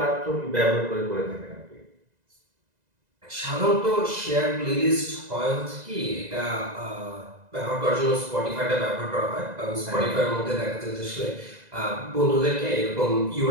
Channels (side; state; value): left; late; 2.0 ms